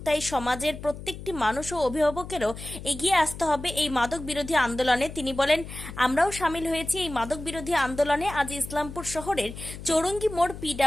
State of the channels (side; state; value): left; noise; hum, 12 dB below the sound